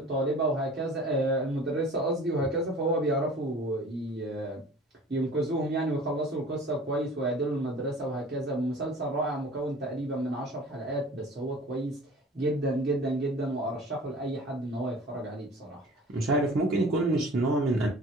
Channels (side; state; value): both; normal; correlation 0.44